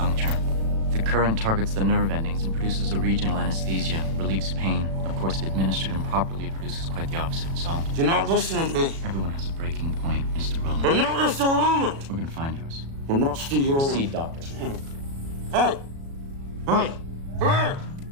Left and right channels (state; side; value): late; left; 36 ms